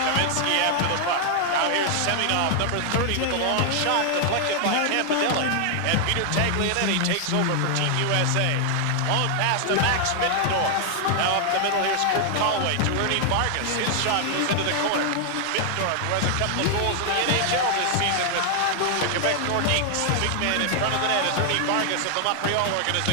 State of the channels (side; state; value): both; different; correlation 0.00